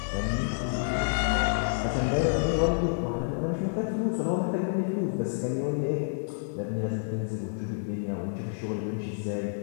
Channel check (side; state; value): right; silent; 59 dB below the other